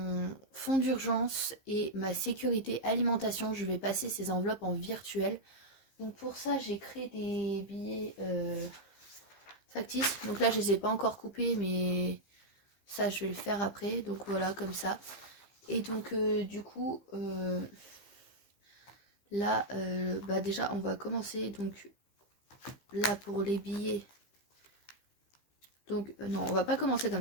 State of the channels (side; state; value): right; late; 15 ms